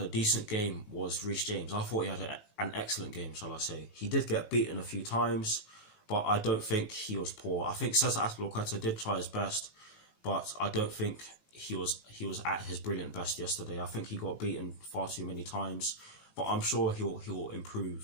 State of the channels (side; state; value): right; late; 18 ms